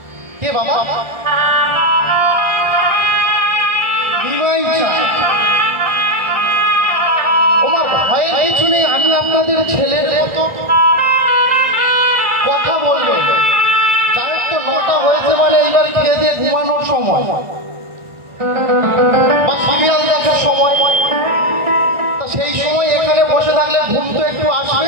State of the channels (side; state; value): left; late; 1.4 ms